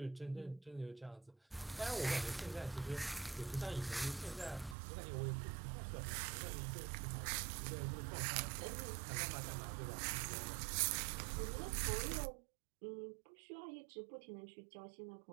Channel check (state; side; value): drops out; left; at 4.8 s